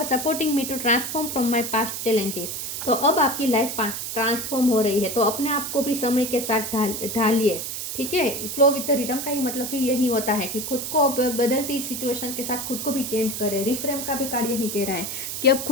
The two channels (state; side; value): noise; right; hiss, 5 dB below the sound